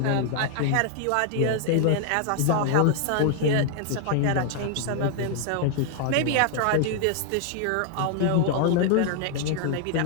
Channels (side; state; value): both; different; correlation 0.00